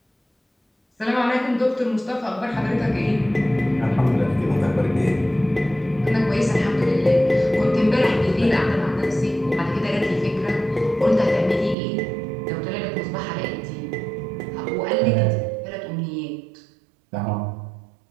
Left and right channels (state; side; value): drops out; left; at 11.8 s